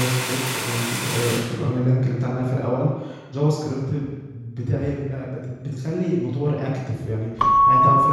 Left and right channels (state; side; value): identical; both; correlation 1.00